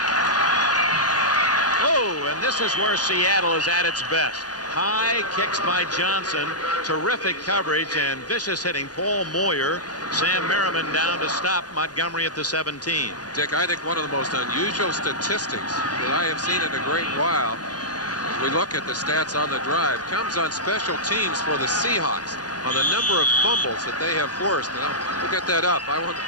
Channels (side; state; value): right; late; 0.69 ms